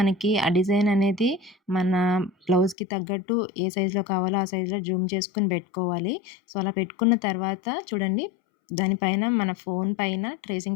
ఆ డిజైన్ అనేది మన బ్లౌజ్‌కి తగ్గట్టు ఏ సైజులో కావాలో ఆ సైజులో జూమ్ చేసుకొని పెట్టుకోవాలి. సో, అలా పెట్టుకున్న తర్వాత చూడండి, దానిపైన మన ఫోన్ పైన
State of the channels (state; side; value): drops out; right; at 2.8 s